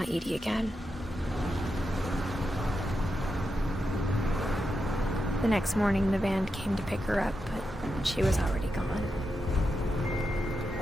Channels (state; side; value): normal; both; correlation 0.87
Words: Edie again. The next morning, the band came to pick her up, but she was already gone.